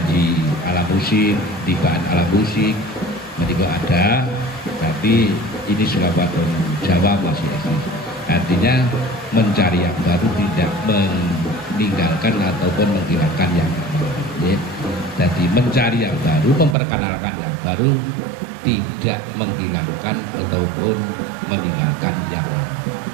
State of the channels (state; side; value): drops out; left; at 16.8 s